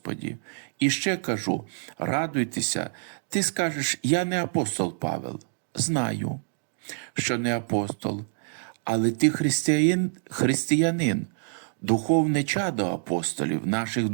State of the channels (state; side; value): silent; left; digital silence